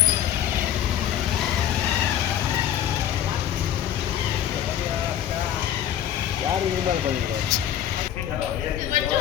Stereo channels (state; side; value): quieter; right; 10.6 dB